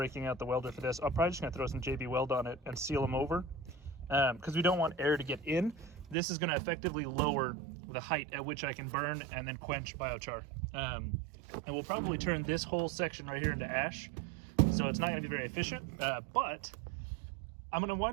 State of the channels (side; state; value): left; drops out; at 6.2 s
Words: out the welder for this. I'm probably just gonna throw some JB Weld on it and seal them over, because we don't want air to get in. This is gonna effectively lower the height at which I can burn and then quench biochar. And we'll probably turn this whole section right here into ash, so it's not gonna be very efficient, but I'm gonna